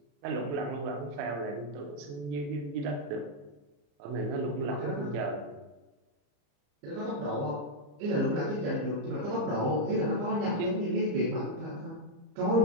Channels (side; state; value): left; late; 34 ms